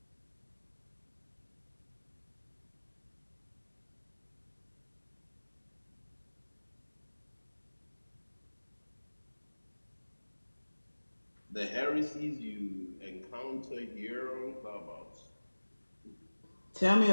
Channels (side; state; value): both; inverted; correlation -1.00